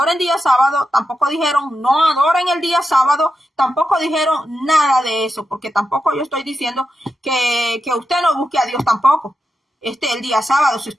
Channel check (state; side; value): normal; both; correlation 0.88